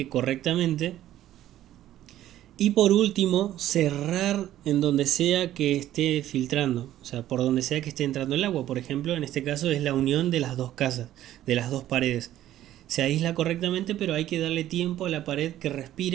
correctamente. Y por último, cerrar en donde sea que esté filtrando, o sea, por donde sea que esté entrando el agua. Por ejemplo, en este caso es la unión de las dos casas, de las dos paredes. Se aísla correctamente, pero hay que darle tiempo a la pared que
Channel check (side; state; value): left; quieter; 13.0 dB